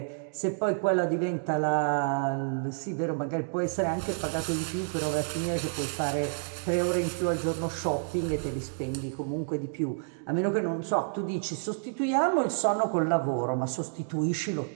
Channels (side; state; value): left; silent; digital silence